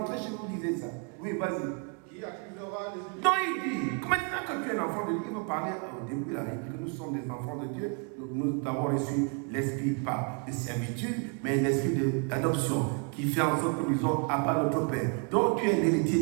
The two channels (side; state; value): left; quieter; 38.0 dB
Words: chez vous, lisez ça. Oui, vas-y. Qui accusera les Donc il dit, maintenant que tu es un enfant de Dieu, il va parler au début, là, il dit que nous sommes des enfants de Dieu. Nous avons reçu l'esprit pas de servitude, mais l'esprit d'adoption qui fait en sorte que nous sommes à part notre Père. Donc tu es un héritier